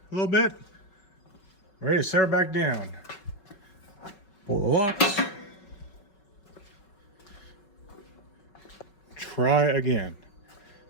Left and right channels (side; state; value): right; late; 5.3 ms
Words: a little bit, ready to set her back down. Pull the locks. Try again.